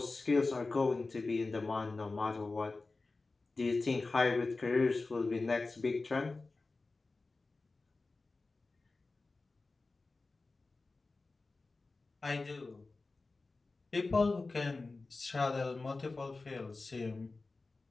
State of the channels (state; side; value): quieter; right; 3.6 dB